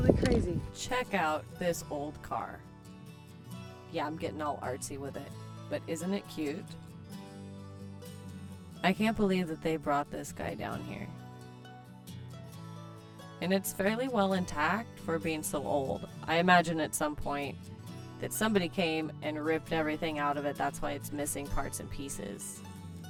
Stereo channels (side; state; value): both; identical; correlation 1.00